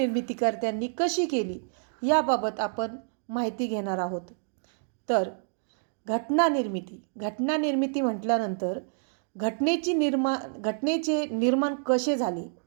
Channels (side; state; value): left; silent; digital silence